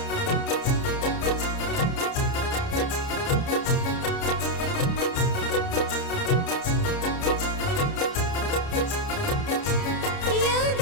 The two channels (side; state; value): right; late; 30 ms